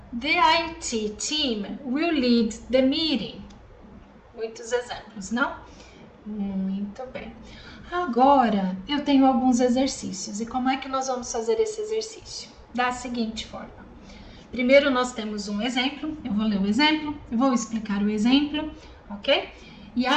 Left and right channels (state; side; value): identical; both; correlation 1.00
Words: The IT team will lead the meeting. Muitos exemplos, não? Muito bem. Agora, eu tenho alguns exercícios. E como é que nós vamos fazer esse exercício? Da seguinte forma. Primeiro, nós temos um exemplo. Eu vou ler o exemplo, eu vou explicar o exemplo, ok? E